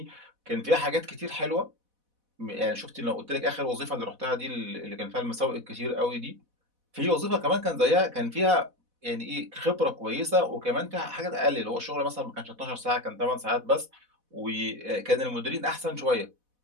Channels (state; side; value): late; left; 4.1 ms